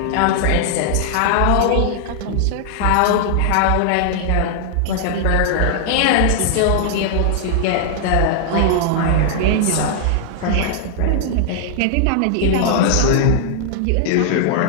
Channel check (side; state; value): both; different; correlation -0.01